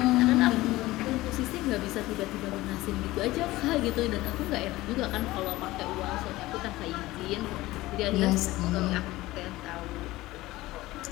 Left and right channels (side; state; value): right; quieter; 18.2 dB